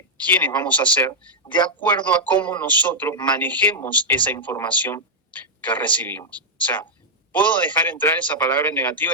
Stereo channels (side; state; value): both; normal; correlation -0.05